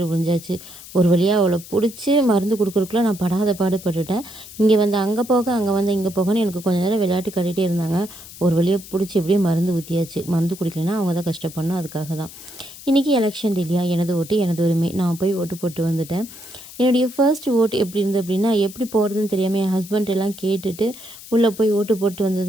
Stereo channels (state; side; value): noise; left; hiss, 16 dB below the sound